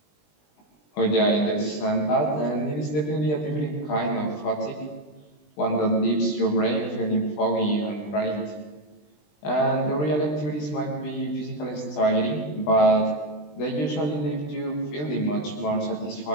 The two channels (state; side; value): late; right; 20 ms